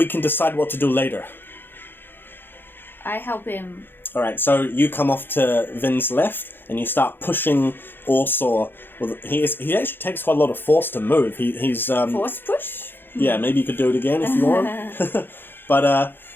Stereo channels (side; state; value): right; late; 0.10 ms